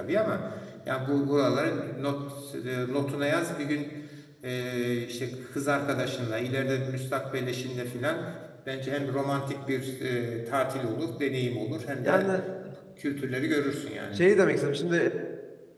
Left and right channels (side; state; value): both; identical; correlation 1.00